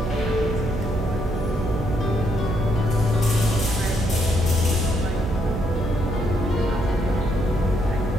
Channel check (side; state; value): right; noise; hum, 5 dB below the sound